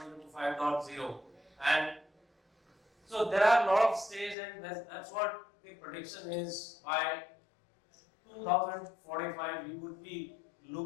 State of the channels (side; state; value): right; drops out; at 4.4 s